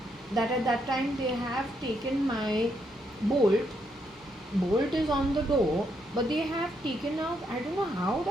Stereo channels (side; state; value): both; normal; correlation 0.77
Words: that at that time they have taken my bolt. Bolt is on the door, but they have taken out, I don't know how